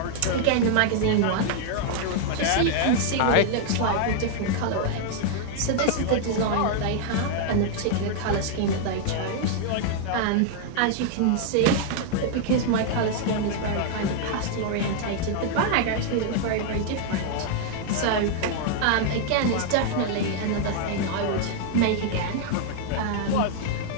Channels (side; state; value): both; different; correlation -0.01